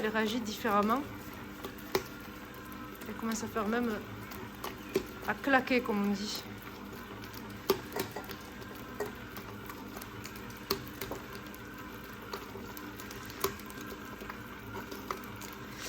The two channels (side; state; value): both; identical; correlation 1.00